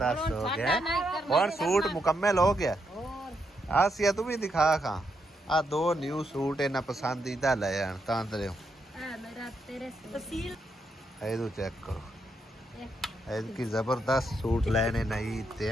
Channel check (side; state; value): both; normal; correlation 0.80